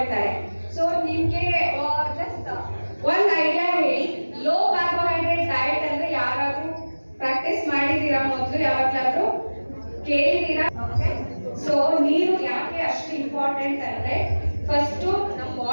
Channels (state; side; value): inverted; both; correlation -1.00